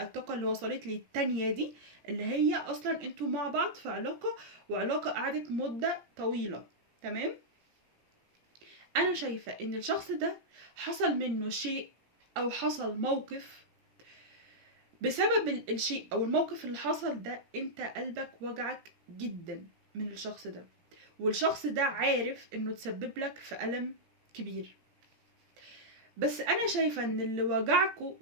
الطاقة اللي وصلت لي التانية دي، اللي هي اصلا انتوا مع بعض في علاقة، وعلاقة قعدت مدة طويلة. تمام، انا شايفة ان الشخص ده حصل منه شيء او حصل موقف، بسبب الشيء او الموقف اللي حصل ده انت قلبك وجعك جدا من الشخص ده، والشخص ده عارف انه تسبب لك في ألم كبير. بس انا شايفة ان اللي وجعكوا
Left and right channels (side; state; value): left; late; 17 ms